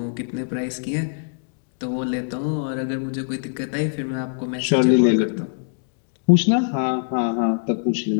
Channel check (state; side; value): silent; right; digital silence